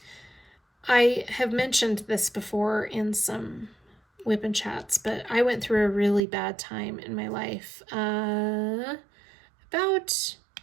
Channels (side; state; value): left; drops out; at 6.2 s